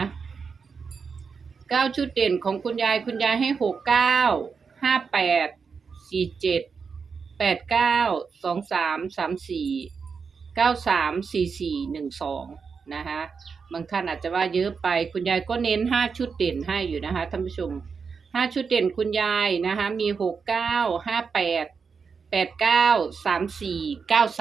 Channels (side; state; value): left; quieter; 5.6 dB